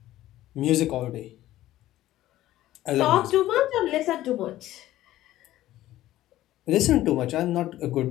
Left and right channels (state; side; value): quieter; right; 14.6 dB